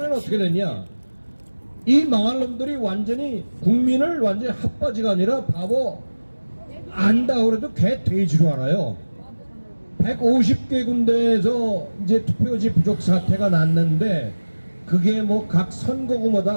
어떻게 됐냐, 이 망할 놈들이 완전히 국민을 완전히 핫바지가 아니라 바보 안다 그래도 개 돼지로 알아요. 150개 군데에서 이제 투표지 부족 사태가 났는데 그게 뭐 각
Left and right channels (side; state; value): both; inverted; correlation -1.00